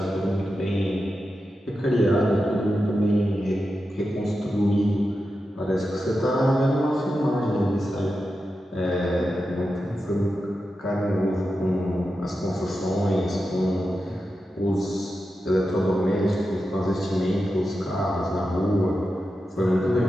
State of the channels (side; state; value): both; normal; correlation 0.90